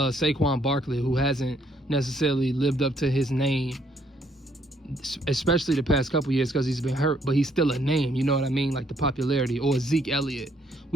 Barkley, who hasn't necessarily lived up to his name, especially the past couple years because he's been hurt, but he's still a name, you know what I mean? Like the popularity, or Zeke Elliott.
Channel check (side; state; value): both; normal; correlation 0.68